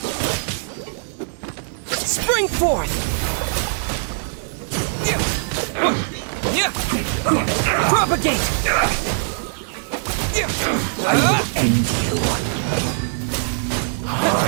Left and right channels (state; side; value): silent; left; digital silence